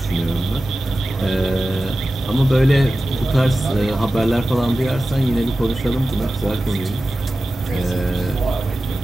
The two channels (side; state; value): both; normal; correlation 0.94